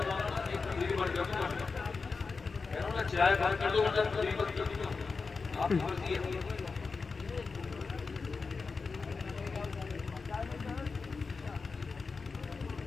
چائے بند کر دو، آپ کی مرضی ہے۔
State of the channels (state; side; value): quieter; right; 4.6 dB